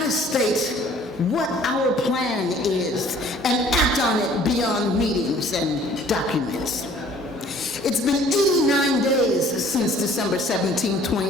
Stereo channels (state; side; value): normal; both; correlation 0.54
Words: us state what our plan is and act on it beyond meetings and documents. It's been 89 days since December 17,